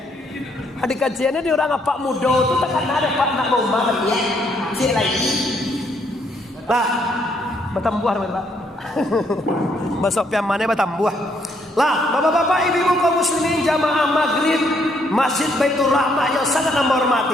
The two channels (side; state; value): both; normal; correlation 0.71